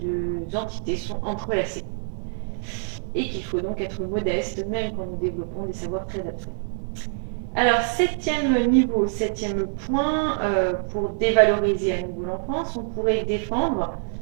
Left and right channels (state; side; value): silent; left; digital silence